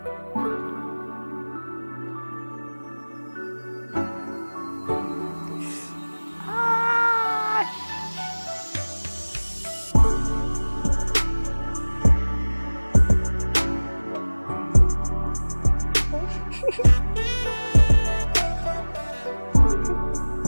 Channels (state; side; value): inverted; both; correlation -1.00